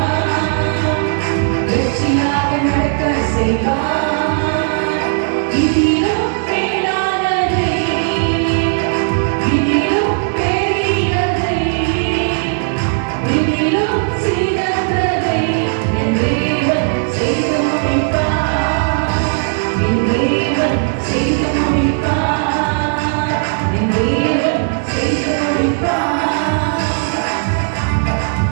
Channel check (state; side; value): silent; left; 59 dB below the other